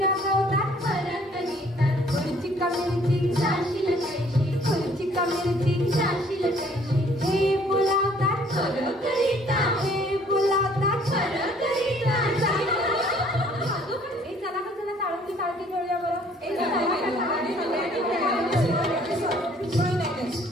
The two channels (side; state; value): both; normal; correlation 0.59